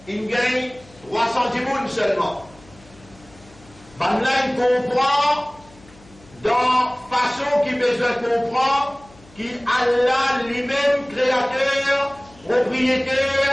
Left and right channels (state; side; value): noise; left; hum, 25 dB below the sound